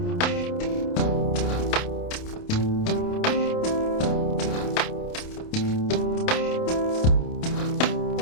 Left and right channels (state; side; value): late; right; 28 ms